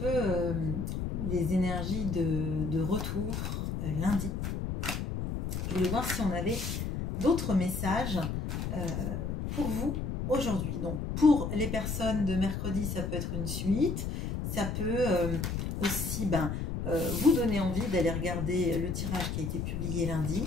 les énergies de retour lundi, je voulais voir si on avait d'autres messages pour vous aujourd'hui. Donc pour les personnes de mercredi, ça peut être une suite, ça peut aussi vous donner envie d'aller regarder le tirage qui a été publié lundi.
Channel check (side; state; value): left; noise; rumble, 3 dB below the sound